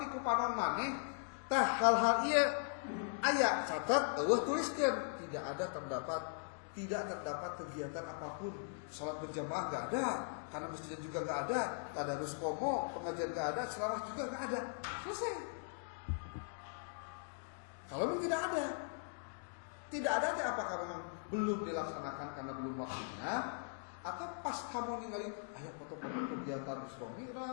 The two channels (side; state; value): right; silent; digital silence